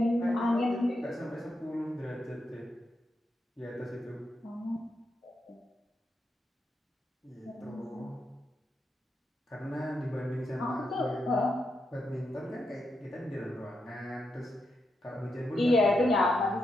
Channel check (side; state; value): both; normal; correlation 0.83